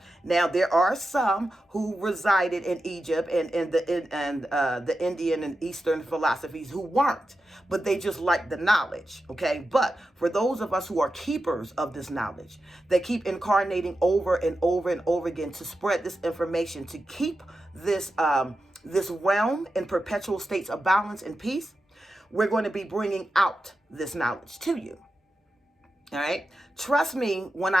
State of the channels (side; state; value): both; normal; correlation 0.91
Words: Now there are some who resided in Egypt and the Indian and Eastern philosophies who weren't, but they just liked the knowledge. Okay, but for those of us who are keepers of this knowledge, that keep incarnating over and over and over again to spread this information, to keep this realm in perpetual states of balance and peace, we're going to be bringing out this knowledge to you. All right, trust me when